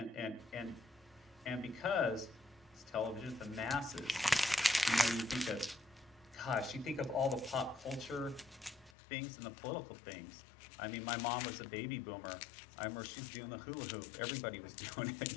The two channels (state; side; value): drops out; right; at 9.0 s